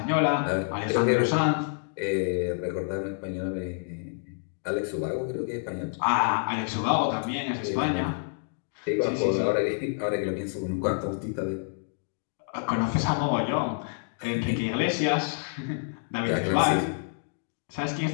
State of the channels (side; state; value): right; silent; digital silence